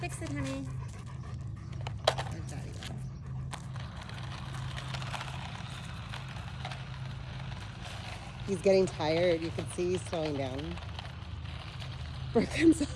Fix it, honey. There's Daddy. He's getting tired. You can see he's slowing down. Brooklyn's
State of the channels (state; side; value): identical; both; correlation 1.00